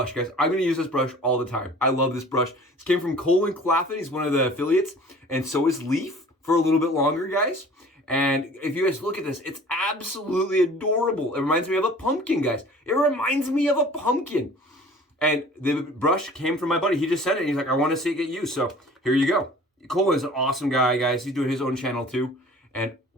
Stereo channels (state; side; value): normal; both; correlation 0.47